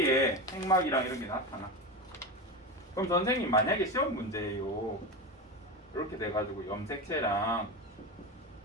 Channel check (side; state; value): both; normal; correlation 0.20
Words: 핵막이랑 이런 게 나타나. 그럼 선생님 만약에 시험 문제예요. 이렇게 돼가지고 염색체랑